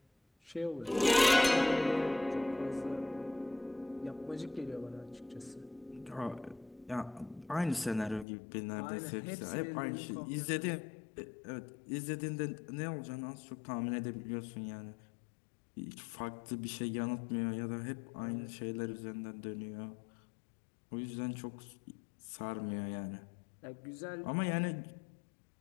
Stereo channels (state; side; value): drops out; right; at 8.2 s